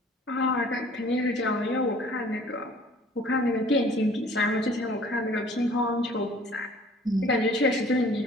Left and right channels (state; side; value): normal; both; correlation 0.51